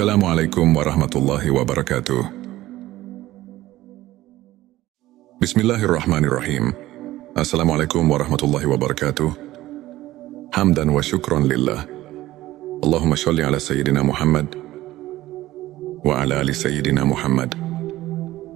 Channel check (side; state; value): left; quieter; 16.1 dB